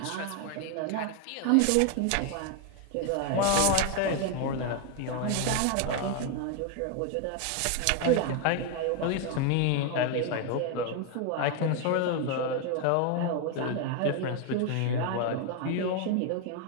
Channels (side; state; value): both; different; correlation 0.01